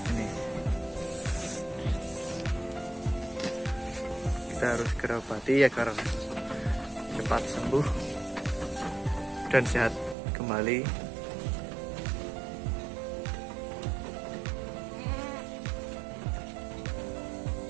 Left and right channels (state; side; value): drops out; left; at 10.2 s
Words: Ini kita harus segera obati agar cepat sembuh dan sehat kembali.